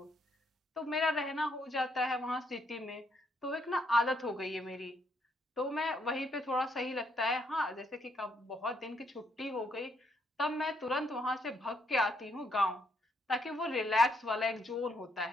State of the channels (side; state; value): both; normal; correlation 0.73